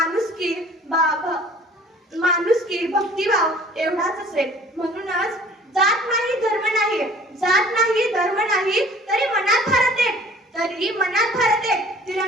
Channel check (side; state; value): both; normal; correlation 0.50